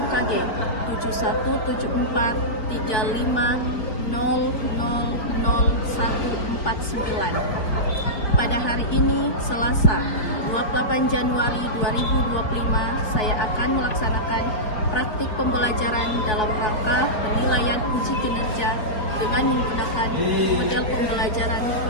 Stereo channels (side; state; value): right; late; 4.7 ms